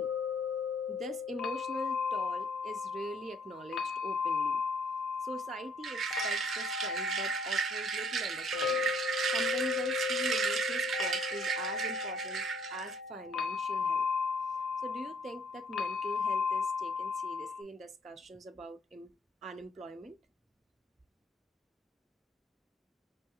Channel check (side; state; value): both; normal; correlation 0.62